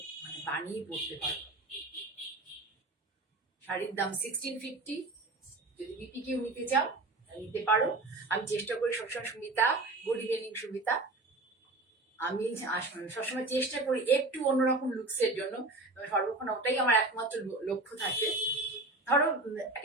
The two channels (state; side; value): quieter; left; 3.0 dB